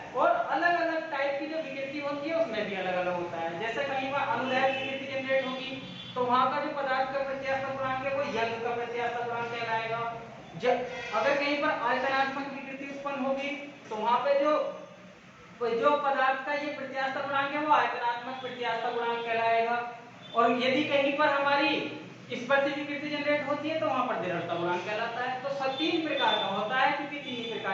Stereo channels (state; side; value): identical; both; correlation 1.00